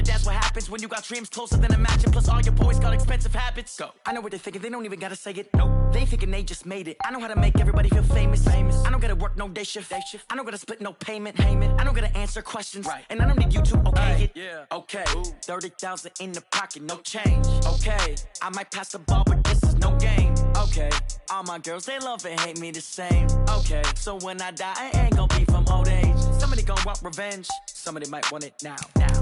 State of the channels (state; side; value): identical; both; correlation 1.00